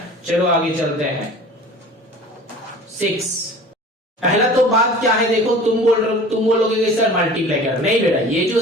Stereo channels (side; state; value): both; normal; correlation 0.42